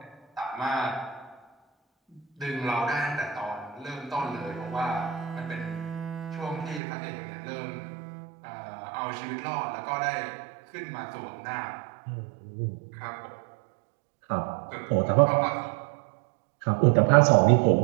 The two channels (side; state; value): left; drops out; at 6.8 s